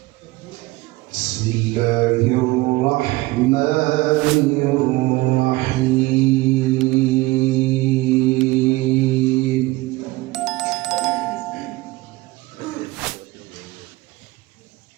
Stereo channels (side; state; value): left; quieter; 20.6 dB